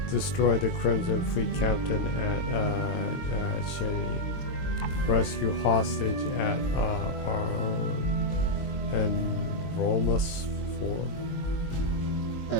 Destroy the Crimson Fleet captain at Cheney. Rescue hostage at and Romus 4.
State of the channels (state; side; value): late; right; 22 ms